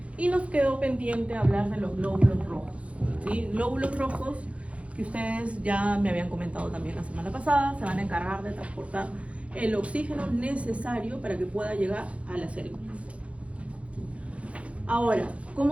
Y nos quedó pendiente hablar de los glóbulos rojos, ¿sí? Glóbulos rojos que ustedes ya me habían comentado también la semana pasada, se van a encargar de transportar el oxígeno necesario para que pueda llegar a las células. Ahora,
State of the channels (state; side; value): late; left; 0.063 ms